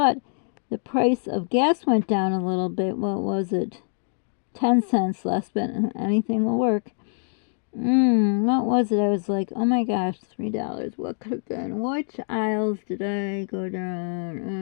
the price of gas went down a little bit. What was it? 10 cents less, but anything will work. What was it? I was like, oh my gosh, $3. What could have been? Which aisles did I go down?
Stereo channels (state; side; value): silent; right; digital silence